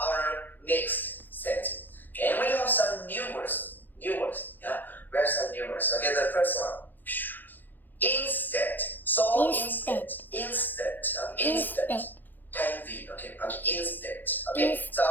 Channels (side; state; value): right; late; 0.088 ms